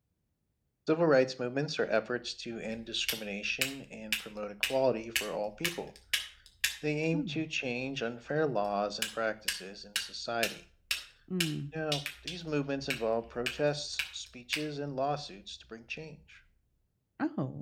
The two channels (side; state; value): both; identical; correlation 1.00